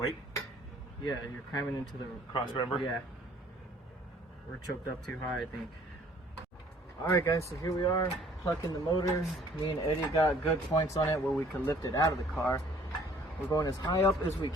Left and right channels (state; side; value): normal; both; correlation 0.57